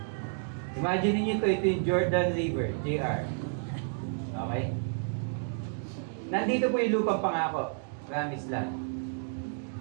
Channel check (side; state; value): left; silent; digital silence